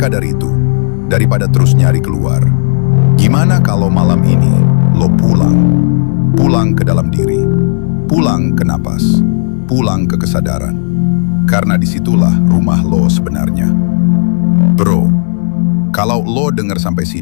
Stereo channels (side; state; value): right; silent; digital silence